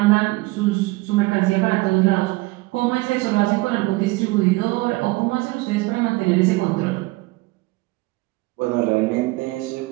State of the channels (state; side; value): quieter; left; 22.0 dB